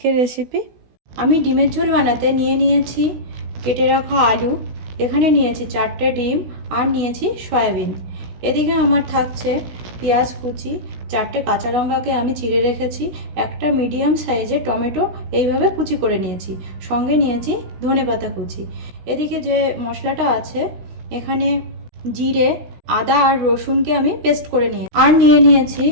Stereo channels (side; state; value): left; late; 16 ms